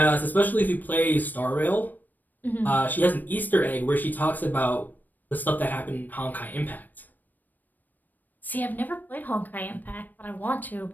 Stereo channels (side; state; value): right; late; 0.088 ms